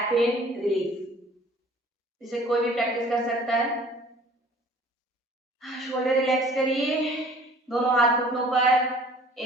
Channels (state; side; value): normal; both; correlation 0.51